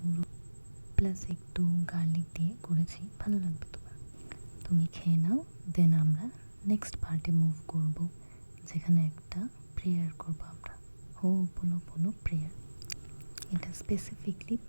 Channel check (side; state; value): both; inverted; correlation -1.00